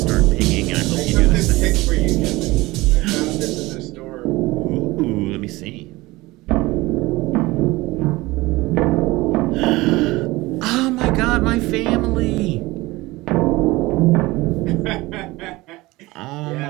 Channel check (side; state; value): left; quieter; 20.5 dB